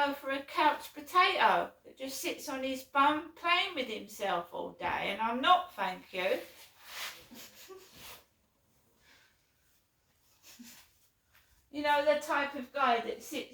for a couch potato that just sits on his bum playing with himself all day, and I'm not, thank you. You know, the type of guy that sits,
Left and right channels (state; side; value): identical; both; correlation 1.00